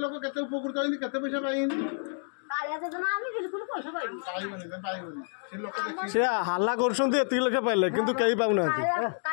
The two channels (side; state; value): right; silent; 59 dB below the other